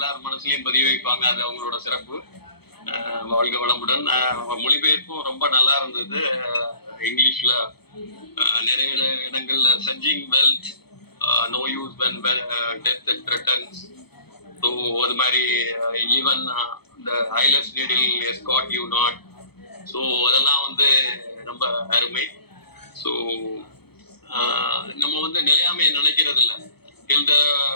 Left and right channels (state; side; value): late; right; 0.97 ms